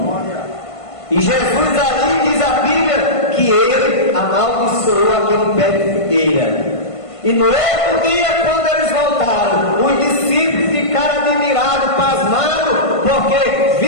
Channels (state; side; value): late; right; 1.5 ms